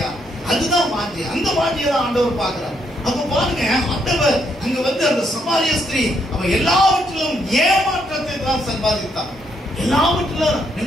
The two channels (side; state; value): both; normal; correlation 0.75